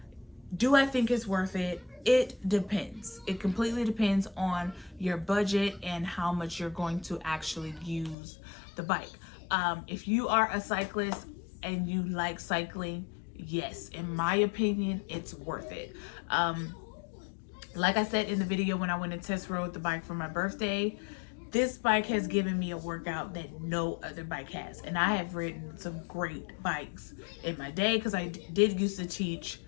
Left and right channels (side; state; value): right; drops out; at 8.2 s